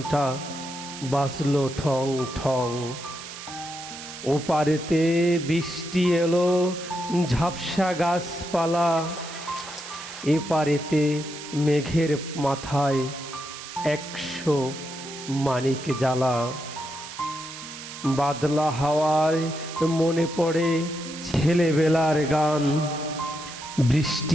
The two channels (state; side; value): noise; right; hiss, 12 dB below the sound